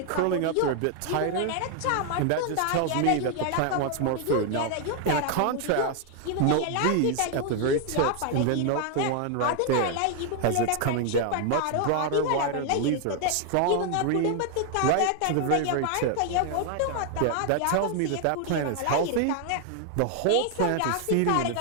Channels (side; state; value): both; different; correlation 0.00